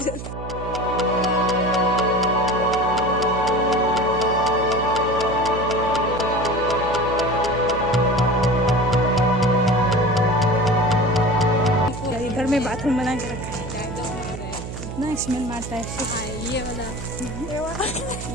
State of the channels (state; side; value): noise; right; hum, 9 dB below the sound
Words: जरूर। इधर में बाथरूम बना के रखा है ना, स्मेल मारता है। ये